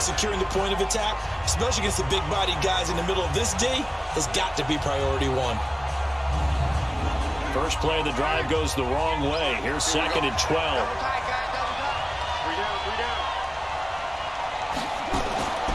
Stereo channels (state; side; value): identical; both; correlation 1.00